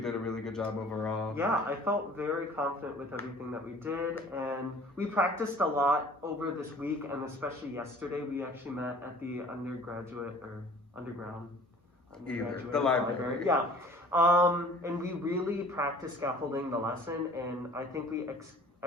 a really good job overall. Yeah, I felt very confident with everything that we did, and we practiced a lot over this week, and especially yesterday. We actually met at the underground The library. Yeah. And we really practiced scaffolding the lesson, and I think we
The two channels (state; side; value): normal; both; correlation 0.49